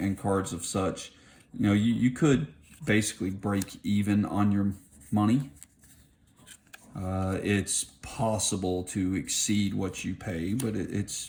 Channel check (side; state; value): both; identical; correlation 1.00